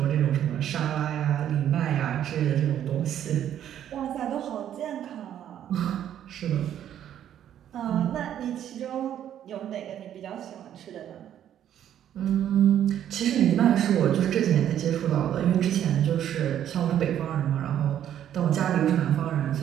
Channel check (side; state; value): left; quieter; 10.5 dB